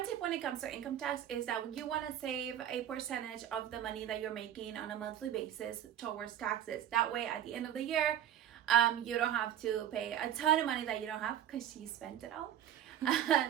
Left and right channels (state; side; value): quieter; left; 10.6 dB